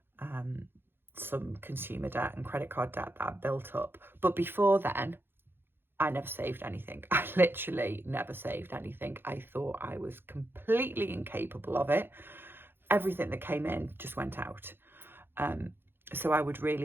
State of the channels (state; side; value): late; left; 0.10 ms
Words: some consumer debt and credit card debt that I built up. But before then, I never saved anything. I literally never saved anything. I thought I was completely incapable of it. Everything that came in just went out. So I would